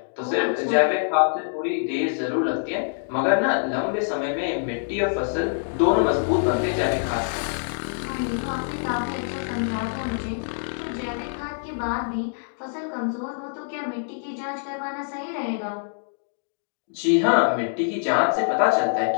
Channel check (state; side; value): silent; right; digital silence